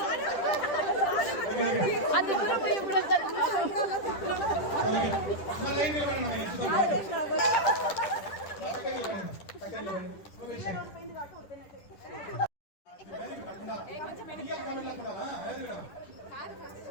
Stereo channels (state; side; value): late; right; 10 ms